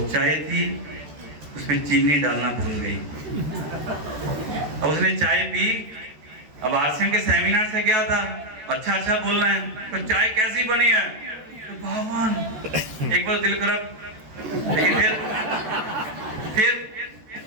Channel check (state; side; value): late; left; 13 ms